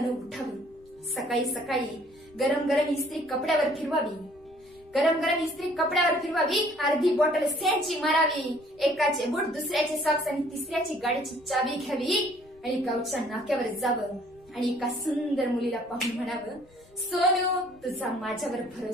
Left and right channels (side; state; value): left; noise; rumble, 28 dB below the sound